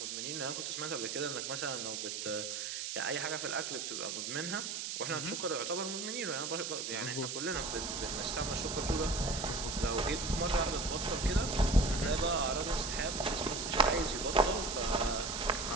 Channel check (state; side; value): noise; right; hiss, 4 dB below the sound